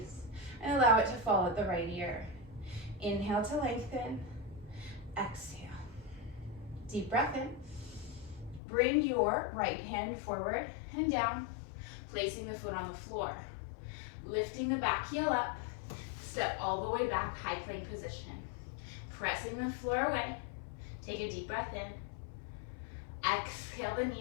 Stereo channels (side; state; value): right; drops out; at 8.6 s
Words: and allow it to fall at the right ear. Inhale to lengthen. Exhale. Deep breath in. Bring your right hand forward and down, placing the foot on the floor. Lifting the back heel up, step all the way back, high plank position. Pressing the floor away. Take a deep breath in. Exhale the